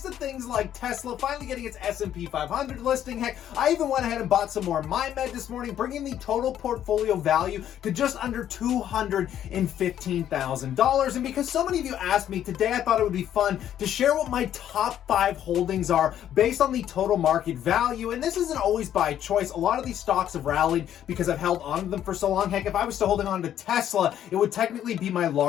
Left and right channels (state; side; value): quieter; right; 10.7 dB